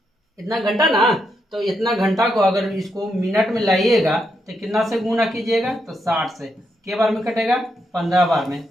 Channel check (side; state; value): both; normal; correlation 0.81